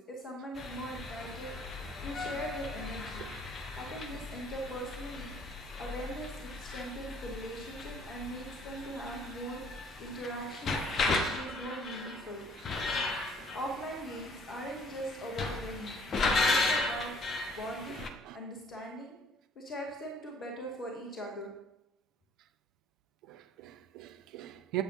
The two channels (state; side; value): normal; both; correlation 0.58